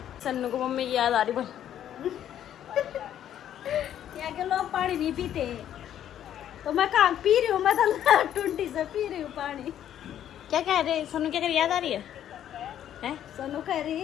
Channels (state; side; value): quieter; right; 10.7 dB